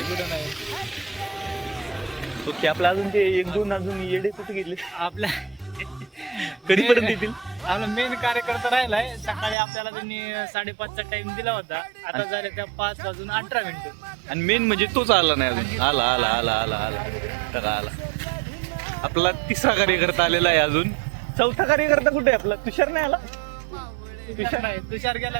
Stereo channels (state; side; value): drops out; left; at 9.6 s